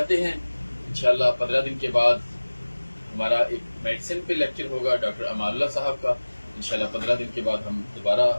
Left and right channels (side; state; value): both; inverted; correlation -1.00